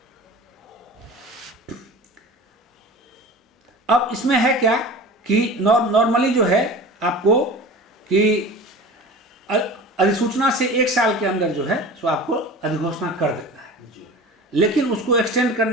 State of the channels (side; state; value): both; normal; correlation 0.37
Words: अब इसमें है क्या कि नॉर्मली जो है आपको कि अधिसूचना से 1 साल के अंदर जो है सो आपको अधिघोषणा कर देता है, लेकिन उसको एक्सटेंड